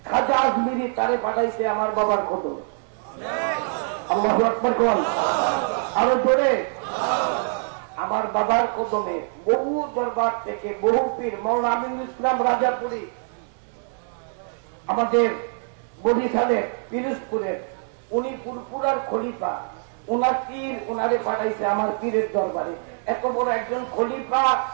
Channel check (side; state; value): left; silent; 61 dB below the other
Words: খাজা আজমিরি তারে পাঠাইছে আমার বাবার কদম। আল্লাহু আকবার কোন। আরো জোরে। আমার বাবার কদমে বহু দরবার থেকে বহু পীর, মৌলানা আমিনুল ইসলাম রাজাপুরী আমাদের বরিশালের পিরোজপুরের, উনি পুরপুরার খলিফা, ওনার পীর ওনারে পাঠাইছে আমার পীরের দরবারে। এত বড় একজন খলিফা,